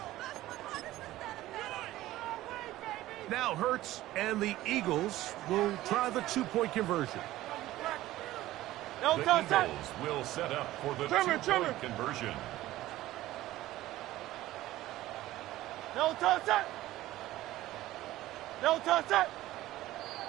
Now Hurts and the Eagles will try the two-point conversion. No The touch it. Eagles will set up for the two-point conversion. No touch it. No touch it.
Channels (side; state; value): left; quieter; 15.8 dB